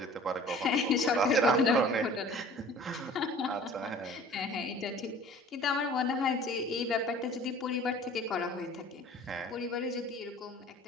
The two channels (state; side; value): normal; both; correlation 0.47